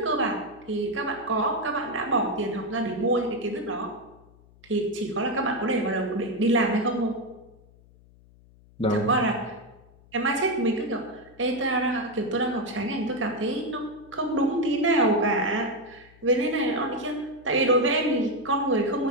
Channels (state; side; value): noise; left; hum, 26 dB below the sound